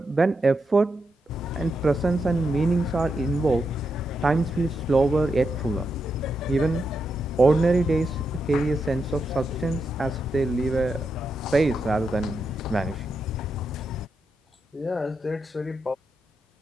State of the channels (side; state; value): both; normal; correlation 0.84